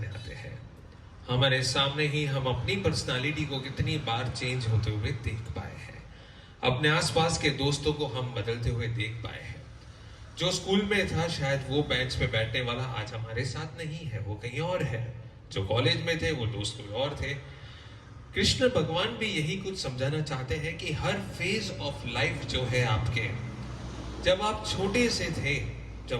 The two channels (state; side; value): identical; both; correlation 1.00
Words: आते हैं. हमारे सामने ही हम अपनी पर्सनालिटी को कितनी बार चेंज होते हुए देख पाए हैं. अपने आसपास के दोस्तों को हम बदलते हुए देख पाए हैं. जो स्कूल में था शायद वो बेंच पे बैठने वाला आज हमारे साथ नहीं है, वो कहीं और है. जो कॉलेज में थे वो दोस्त कोई और थे. कृष्ण भगवान भी यही कुछ समझाना चाहते हैं कि हर फेज ऑफ लाइफ जो है आपके, जब आप छोटे से थे,